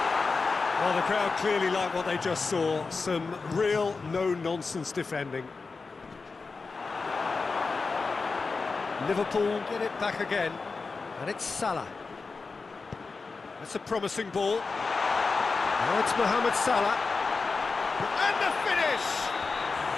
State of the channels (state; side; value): quieter; right; 4.3 dB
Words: Well, the crowd clearly like what they just saw. Some real no-nonsense defending. Liverpool get it back again. And it's Salah. That's a promising ball. Now it's Mohamed Salah. And the finish!